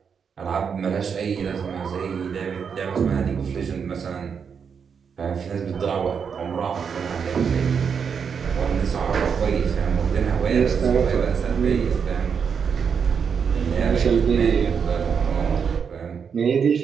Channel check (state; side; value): quieter; left; 6.6 dB